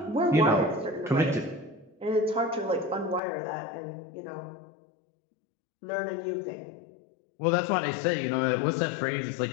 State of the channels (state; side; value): drops out; right; at 3.2 s